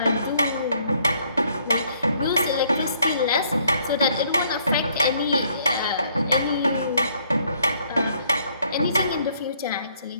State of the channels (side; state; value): both; inverted; correlation -0.66